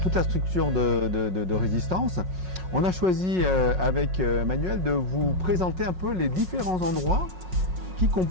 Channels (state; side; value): late; left; 5.5 ms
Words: la structure de Résistance. On a choisi avec Manuel de vous présenter un peu les différents endroits qui